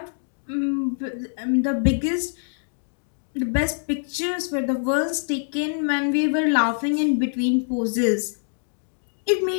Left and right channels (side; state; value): right; silent; digital silence